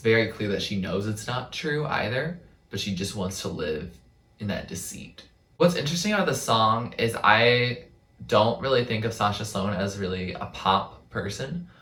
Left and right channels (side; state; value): both; identical; correlation 1.00